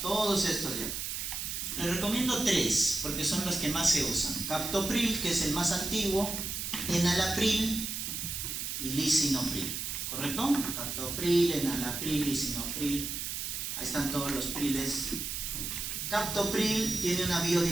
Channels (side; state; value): right; noise; hiss, 4 dB below the sound